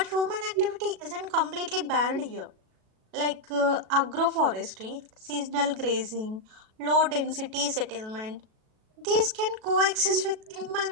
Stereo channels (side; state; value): left; late; 37 ms